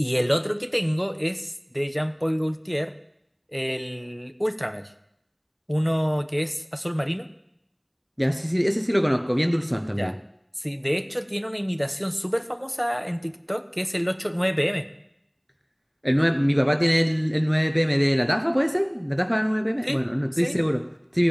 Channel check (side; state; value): both; identical; correlation 1.00